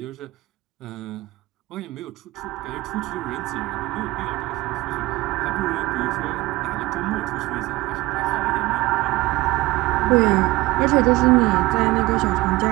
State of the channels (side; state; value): left; quieter; 19.9 dB